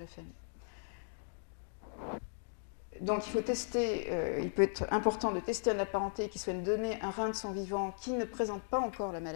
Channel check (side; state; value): right; silent; digital silence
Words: famille. Donc il faut tester, il peut être important de tester un apparenté qui souhaite donner un rein de son vivant qui ne présente pas encore la